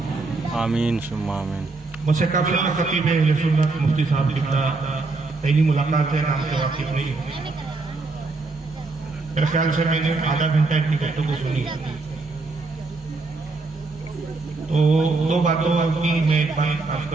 آمین ثم آمین۔ مجھ سے قبل خطیب اہل سنت مفتی صاحب لکھتا پہلی ملاقات ہے، نام سے واقف نہیں ہوں۔ میرے خیال سے میں نے آدھا گھنٹہ اتنی گفتگو سنی، تو دو باتوں کی میں ایک بات عرض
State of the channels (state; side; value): quieter; left; 3.6 dB